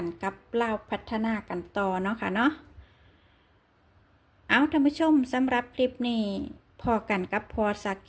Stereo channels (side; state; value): both; identical; correlation 1.00